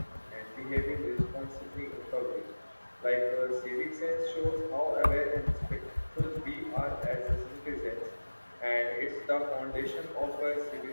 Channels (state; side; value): inverted; both; correlation -1.00